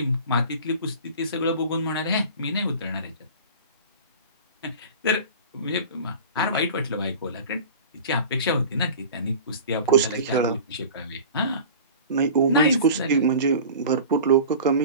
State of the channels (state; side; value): inverted; both; correlation -0.38